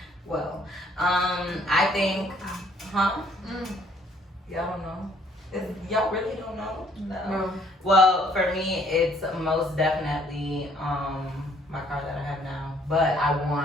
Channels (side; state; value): both; normal; correlation 0.63